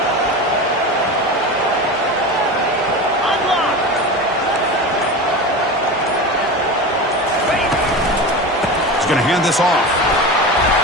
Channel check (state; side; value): normal; both; correlation 0.27